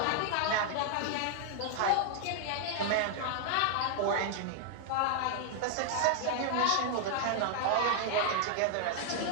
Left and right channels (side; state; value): both; different; correlation 0.00